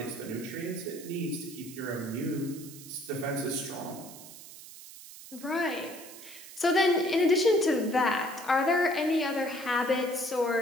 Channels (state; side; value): noise; right; hiss, 16 dB below the sound